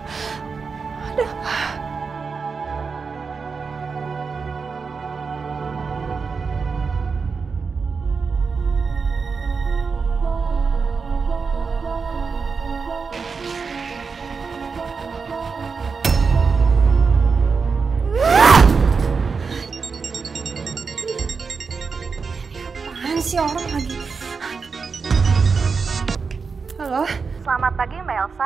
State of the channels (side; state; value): left; quieter; 5.1 dB